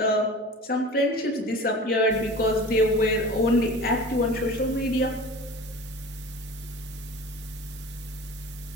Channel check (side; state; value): both; normal; correlation 0.38